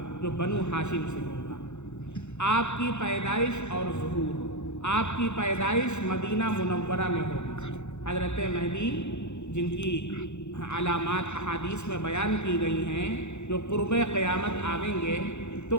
جو بنو ہاشم سے ہوگا۔ آپ کی پیدائش اور ظہور، آپ کی پیدائش مدینہ منورہ میں ہوگی۔ حضرت مہدی جن کی علامات احادیث میں بیان کی گئی ہیں، جو قرب قیامت آئیں گے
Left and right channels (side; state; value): right; late; 0.82 ms